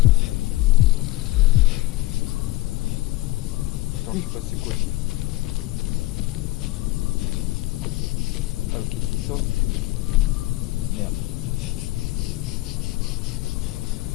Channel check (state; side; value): quieter; right; 19.6 dB